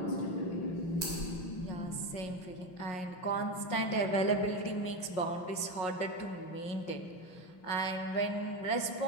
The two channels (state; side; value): late; right; 5.5 ms